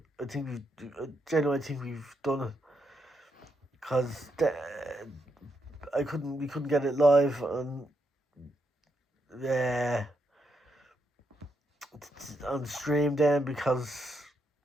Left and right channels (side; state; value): both; normal; correlation 0.80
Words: genuinely think we've done it. because we couldn't get it live on stream then, because